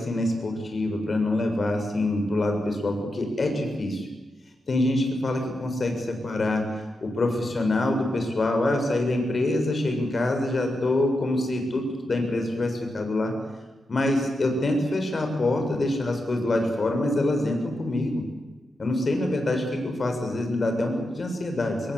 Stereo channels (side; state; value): both; normal; correlation 0.87